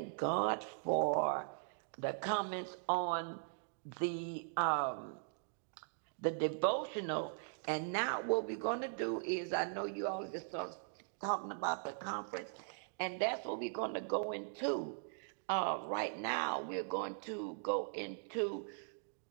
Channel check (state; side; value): silent; left; digital silence